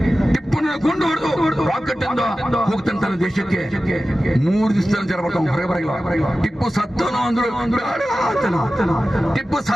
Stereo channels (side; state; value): both; normal; correlation 0.95